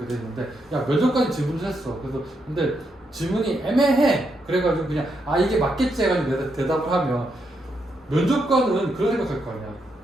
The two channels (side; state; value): both; normal; correlation 0.80